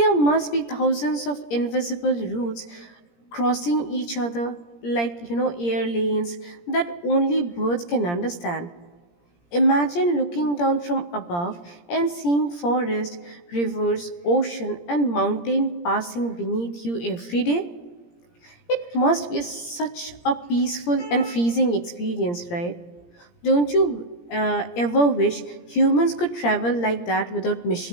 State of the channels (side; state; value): right; late; 17 ms